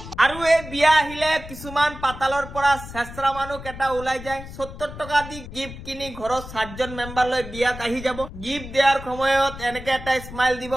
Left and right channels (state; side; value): noise; left; rumble, 12 dB below the sound